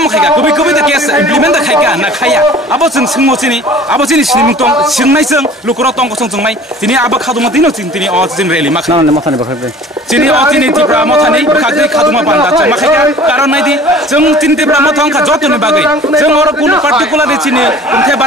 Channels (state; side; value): normal; both; correlation 0.46